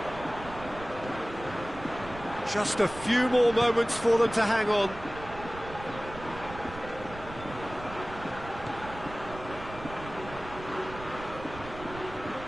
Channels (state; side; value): noise; right; rumble, 14 dB below the sound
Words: Just a few more moments for them to hang on.